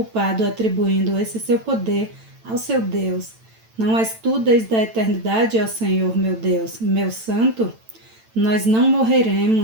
atribuindo esse seu poder ao seu Deus. Não és tu desde a eternidade, ó Senhor, meu Deus, meu santo? Nós não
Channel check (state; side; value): late; left; 9.0 ms